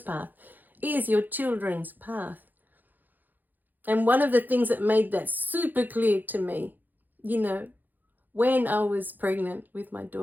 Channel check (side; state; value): left; late; 0.086 ms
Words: is your children's path. And one of the things that made that super clear to me, when I was pregnant with my